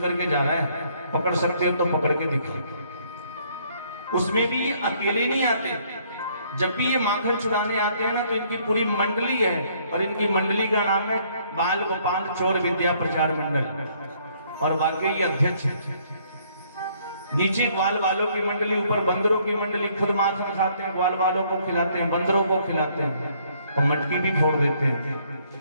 जा रहा है, पकड़ सकते हो तो पकड़ के दिखा। उसमें भी अकेले नहीं आते, जब भी ये माखन चुराने आते हैं ना तो इनकी पूरी मंडली है, और इनकी मंडली का नाम है बाल गोपाल चोर विद्या प्रचार मंडल, और बाकी ये अध्यक्ष है। नीचे ग्वाल वालों की मंडली, ऊपर बंदरों की मंडली। खुद माखन खाते हैं, ग्वाल वालों को खिलाते हैं, बंदरों को खिलाते हैं और मटकी भी फोड़ देते हैं।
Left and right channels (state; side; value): inverted; both; correlation -0.65